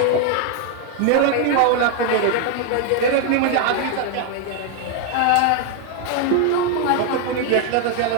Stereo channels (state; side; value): different; both; correlation 0.01